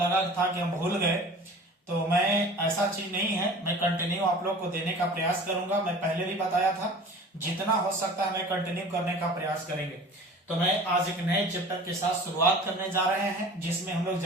था कि हम भूल गए। तो मैं, ऐसा चीज नहीं है, मैं कंटिन्यू आप लोग को देने का प्रयास करूंगा। मैं पहले भी बताया था, जितना हो सकता है मैं कंटिन्यू करने का प्रयास करेंगे। तो मैं आज एक नए चैप्टर के साथ शुरुआत करने जा रहे हैं, जिसमें हम लोग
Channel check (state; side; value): normal; both; correlation 0.42